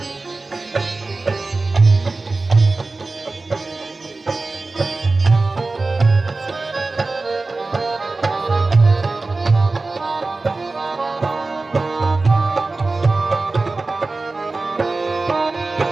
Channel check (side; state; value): left; quieter; 3.5 dB